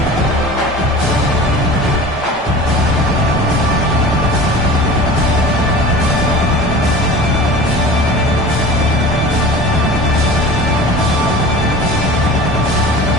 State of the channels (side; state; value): both; normal; correlation 0.38